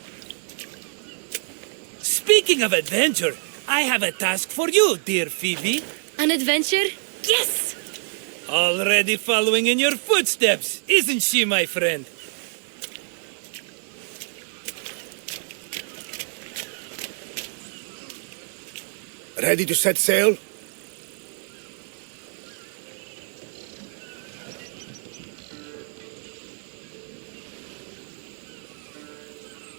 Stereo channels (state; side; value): silent; left; 55 dB below the other